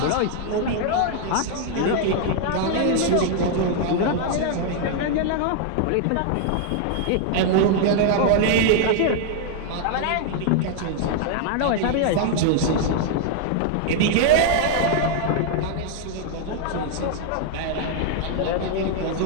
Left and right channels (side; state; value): both; different; correlation 0.00